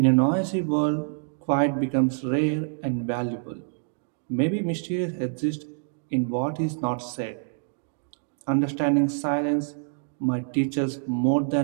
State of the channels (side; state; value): left; silent; 61 dB below the other